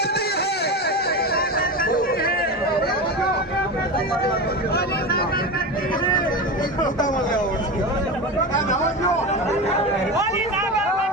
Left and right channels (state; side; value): normal; both; correlation 0.23